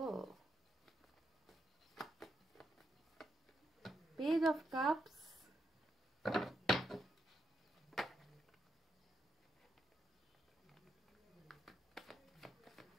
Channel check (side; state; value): both; normal; correlation 0.82